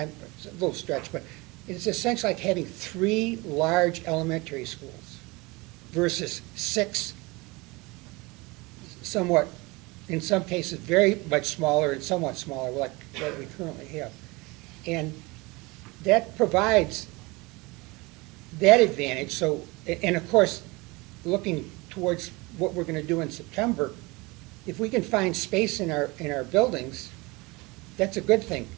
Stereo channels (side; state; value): left; quieter; 24.5 dB